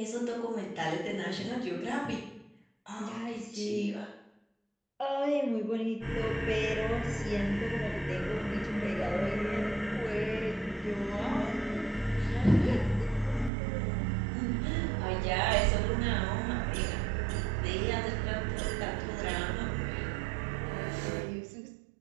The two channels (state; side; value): drops out; left; at 13.5 s